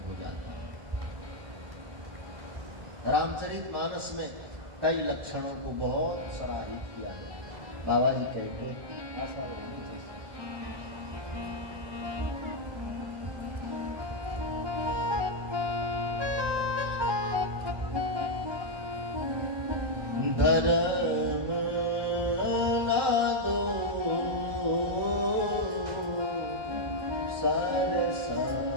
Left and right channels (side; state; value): left; late; 1.2 ms